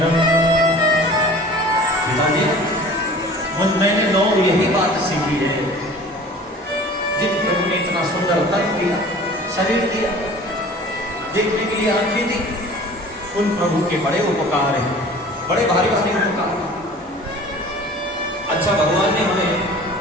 पिताजी मैंने 9 यही बात सीखी है, जिन प्रभु ने इतना सुंदर तन दिया, शरीर दिया, देखने के लिए आंखें दी, उन प्रभु के बड़े उपकार हैं, बड़े भारी भारी उपकार। अच्छा भगवान ने हमें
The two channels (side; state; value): both; normal; correlation 0.44